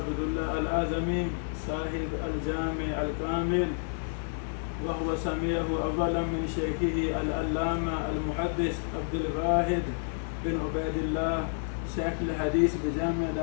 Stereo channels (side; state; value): right; silent; digital silence